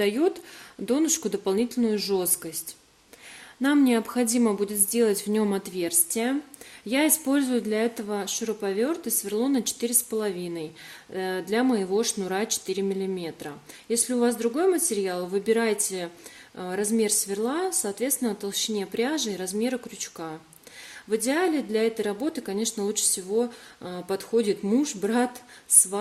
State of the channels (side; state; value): both; identical; correlation 1.00